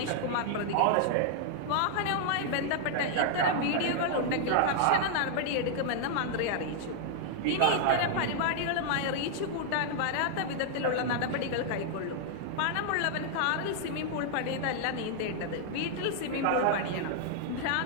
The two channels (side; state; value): both; different; correlation -0.01